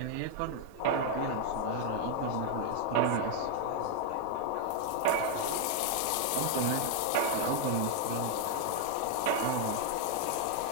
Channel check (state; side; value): different; both; correlation 0.00